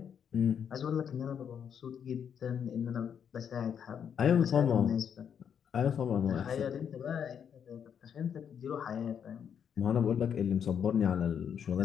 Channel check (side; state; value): right; quieter; 8.0 dB